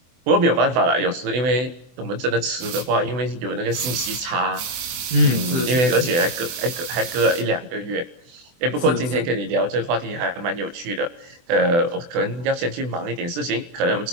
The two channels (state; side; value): late; left; 24 ms